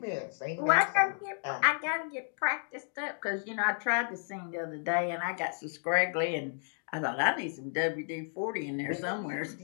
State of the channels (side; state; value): right; silent; 56 dB below the other